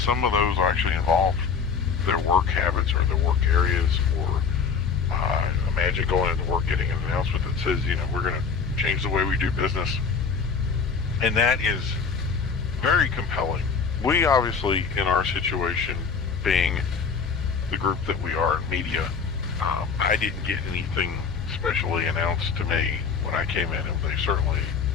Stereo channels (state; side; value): quieter; right; 5.8 dB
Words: of those actually involved their work habits or their work areas, or imagine going into work getting an announcement that says, we're going to change the way we do business. And that is very compelling. We obviously, in our situation, being the group that we are in media, I didn't get anything specially announced to me when I came in, and they certainly